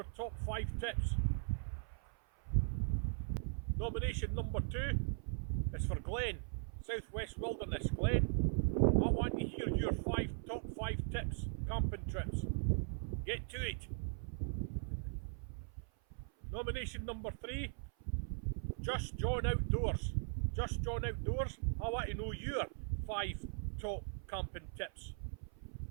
top 5 tips. Nomination number 2 is for Glenn, Southwest Wilderness. Glenn, I want to hear your top 5 tips, camping trips. Get to it. Nomination number 3, Just John Outdoors. Just John Outdoors, I want to know your 5 top camping tips.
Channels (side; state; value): left; silent; 51 dB below the other